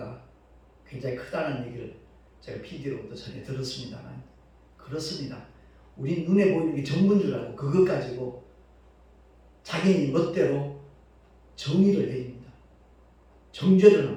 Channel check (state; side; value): identical; both; correlation 1.00